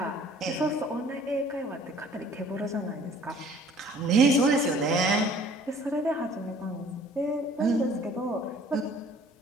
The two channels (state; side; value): normal; both; correlation 0.53